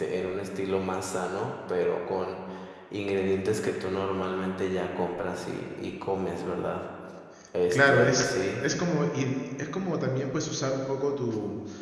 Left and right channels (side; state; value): both; identical; correlation 1.00